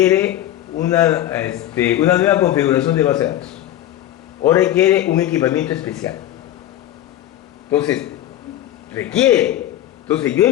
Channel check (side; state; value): right; quieter; 12.9 dB